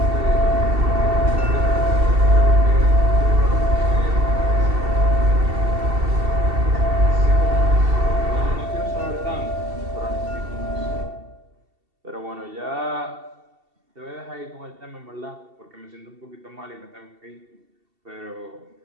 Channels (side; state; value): left; late; 2.7 ms